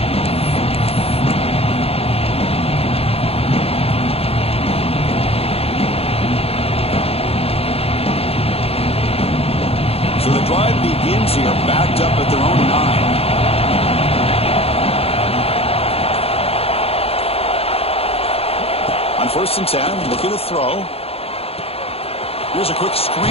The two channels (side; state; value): right; late; 0.29 ms